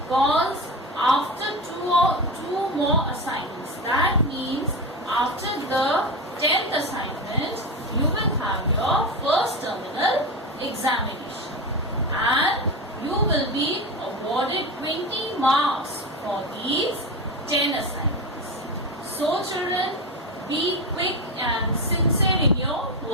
after two more assignments, that means after the 10th assignment, you will have your first terminal examination and you will be awarded 20 marks for these 10 assignments. So children, be quick and sincere in your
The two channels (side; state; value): both; normal; correlation 0.20